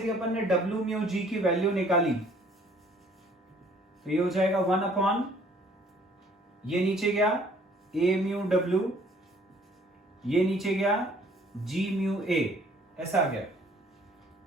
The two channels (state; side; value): normal; both; correlation 0.58